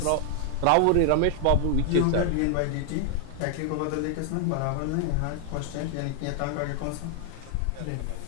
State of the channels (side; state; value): both; different; correlation 0.00